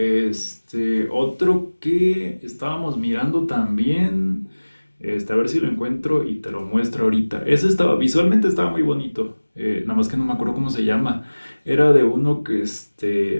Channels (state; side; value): inverted; both; correlation -1.00